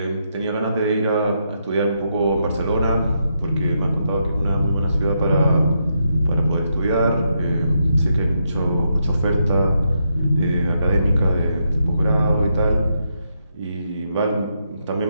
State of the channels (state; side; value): inverted; both; correlation -0.81